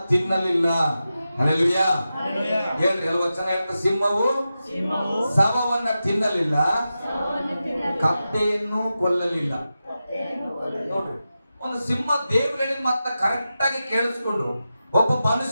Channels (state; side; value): inverted; both; correlation -0.92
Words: ತಿನ್ನಲಿಲ್ಲ. ಹಲ್ಲೆಲೂಯಾ. ಹೇಳ್ರಿ, ವಚನ ಹೇಳ್ತ, ಸಿಂಹವು ಶವವನ್ನ ತಿನ್ನಲಿಲ್ಲ, ಕತ್ತೆಯನ್ನು ಕೊಲ್ಲಲಿಲ್ಲ. ನೋಡ್ರಿ, ಒಂದು ಸಿಂಹ ದೇವ್ರು ಹೇಳಿದ ಮಾತ್ರ ಕರೆಕ್ಟ್ ಆಗಿ ಕೇಳಿಸ್ಕೊಂಡು ಒಬ್ಬ